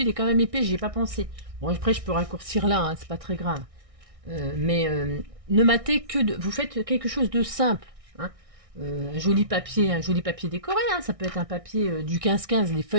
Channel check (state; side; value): late; left; 1.6 ms